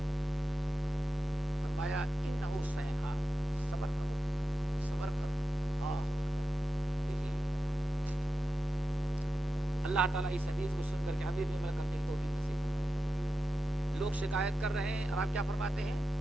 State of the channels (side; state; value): both; normal; correlation 0.91